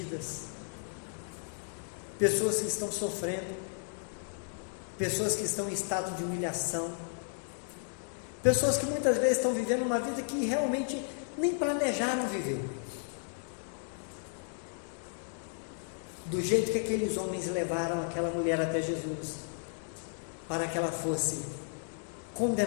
pessoas que estão sofrendo, pessoas que estão em estado de humilhação, pessoas que muitas vezes estão vivendo uma vida que realmente nem planejaram viver. Do jeito que aqueles homens levaram aquela mulher até Jesus, para que ela fosse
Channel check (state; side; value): silent; right; 55 dB below the other